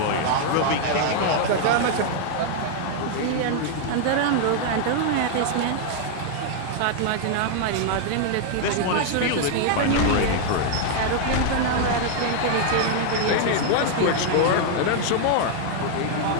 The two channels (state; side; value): different; both; correlation 0.00